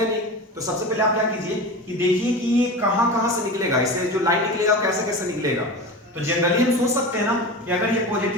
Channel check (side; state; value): both; normal; correlation 0.29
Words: नहीं, तो सबसे पहले आप क्या कीजिए कि देखिए कि ये कहां से निकलेगा, इससे जो लाइन निकलेगा कैसे कैसे निकलेगा। तो जनरली हम सोच सकते हैं ना कि अगर ये